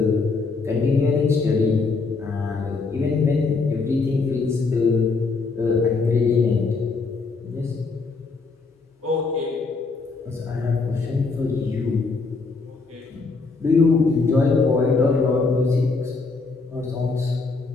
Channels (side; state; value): right; quieter; 4.1 dB